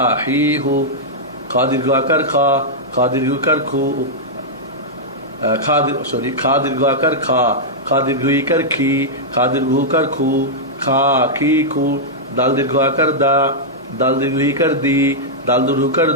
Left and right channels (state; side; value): normal; both; correlation -0.08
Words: হি, হু, খা দীর্ঘ আকার খা, খা দীর্ঘকার খু, খা দীর্ঘ আকার খা, খা দীর্ঘ ইকার খি, খা দীর্ঘকার খু, খা, খি, খু, দাল দীর্ঘ আকার দা, দাল দীর্ঘ ইকার দি, দাল দীর্ঘকার